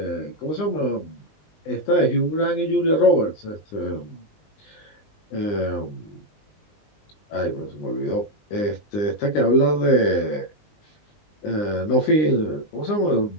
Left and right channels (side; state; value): right; late; 20 ms